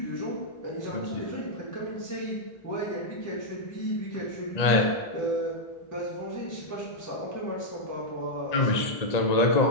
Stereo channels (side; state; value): right; late; 1.8 ms